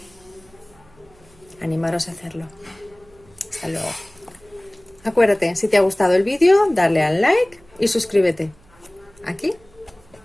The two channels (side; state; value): right; noise; hum, 28 dB below the sound